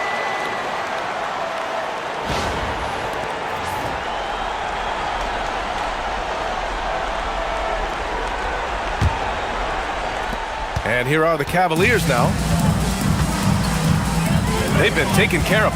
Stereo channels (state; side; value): identical; both; correlation 1.00